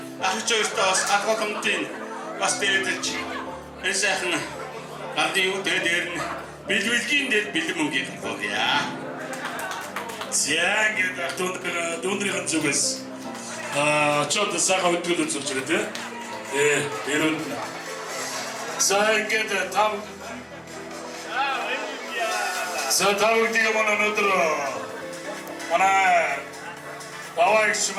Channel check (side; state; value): both; identical; correlation 1.00